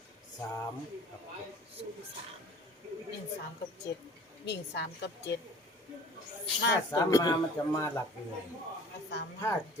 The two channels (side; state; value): both; normal; correlation 0.47